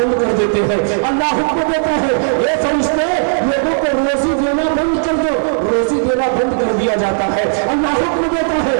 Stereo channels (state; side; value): silent; left; digital silence